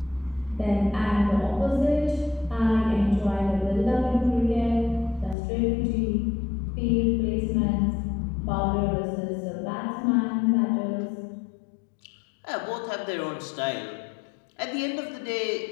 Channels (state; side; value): drops out; right; at 5.4 s